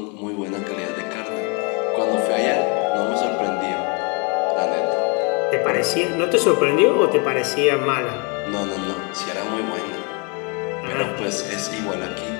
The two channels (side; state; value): right; quieter; 33.0 dB